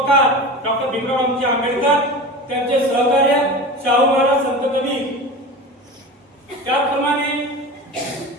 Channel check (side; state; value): both; normal; correlation 0.31